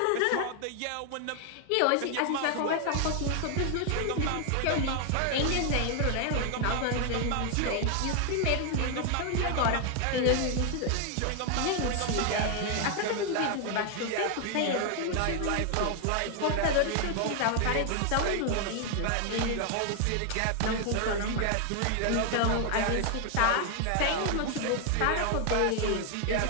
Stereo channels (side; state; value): both; different; correlation 0.00